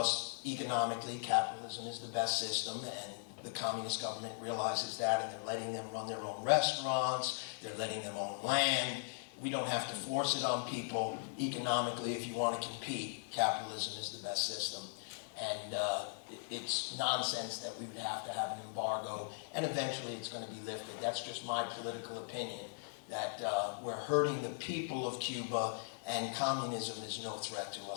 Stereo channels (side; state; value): right; silent; 52 dB below the other